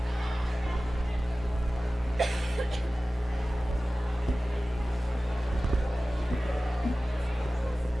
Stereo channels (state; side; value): normal; both; correlation 0.96